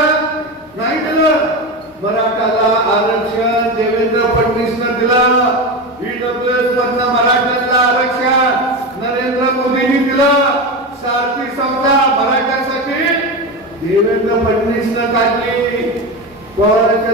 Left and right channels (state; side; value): normal; both; correlation 0.20